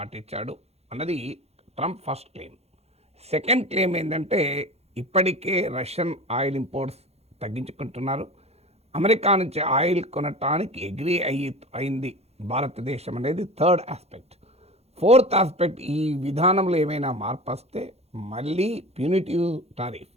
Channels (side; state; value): left; late; 0.30 ms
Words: ఇచ్చాడు అన్నది Trump first claim. Second claim ఏంటంటే ఇప్పటికే రష్యన్ ఆయిల్ ఇంపోర్ట్స్ తగ్గించుకుంటున్నారు, అమెరికా నుంచి ఆయిల్ కొనటానికి అగ్రీ అయింది భారతదేశం అనేది థర్డ్ ఆస్పెక్ట్. ఫోర్త్ ఆస్పెక్ట్, ఈ విధానంలో ఏమైనా మార్పు వస్తే మళ్ళీ ప్యూనిటివ్ టారిఫ్